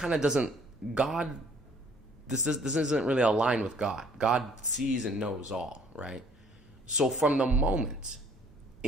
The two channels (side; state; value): both; normal; correlation 0.59